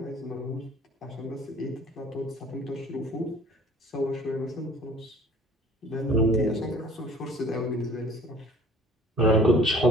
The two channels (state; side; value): normal; both; correlation 0.50